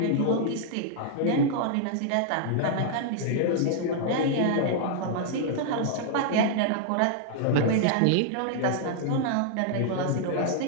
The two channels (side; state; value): both; different; correlation -0.01